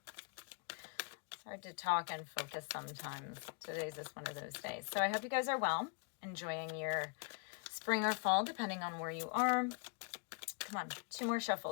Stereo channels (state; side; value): quieter; right; 37.9 dB